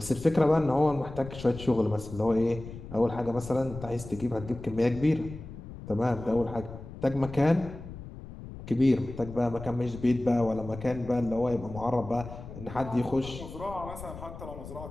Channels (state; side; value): noise; left; rumble, 13 dB below the sound